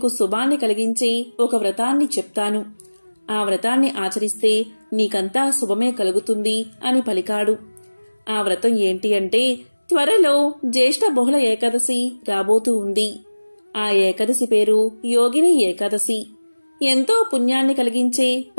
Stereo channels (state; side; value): inverted; both; correlation -1.00